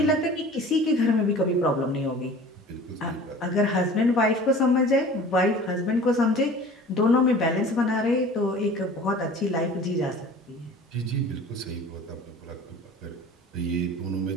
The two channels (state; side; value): normal; both; correlation 0.43